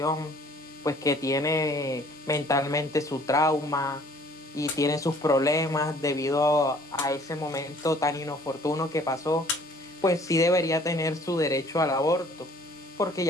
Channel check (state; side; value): normal; both; correlation 0.55